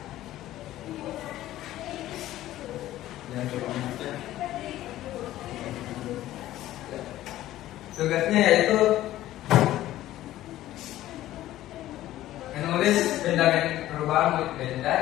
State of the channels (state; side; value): quieter; right; 14.4 dB